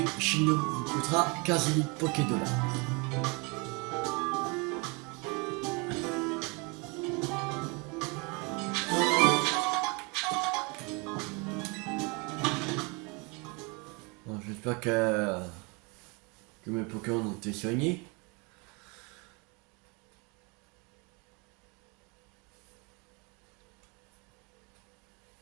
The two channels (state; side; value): quieter; left; 29.4 dB